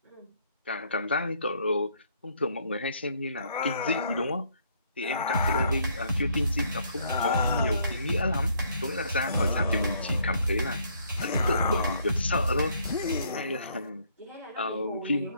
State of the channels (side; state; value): both; inverted; correlation -0.67